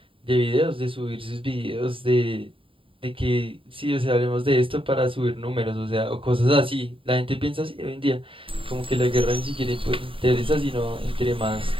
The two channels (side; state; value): left; late; 0.25 ms